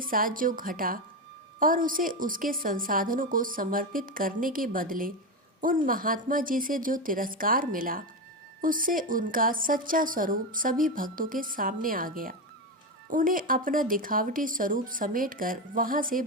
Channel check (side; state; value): both; normal; correlation 0.14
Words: साथ जो घटा और उसे उसके संसाधनों को समर्पित करने के बदले उन महात्मा जी से जो तिरस्कार मिला, उससे उनका सच्चा स्वरूप सभी भक्तों के सामने आ गया। उन्हें अपना दिखावटी स्वरूप समेटकर वहां से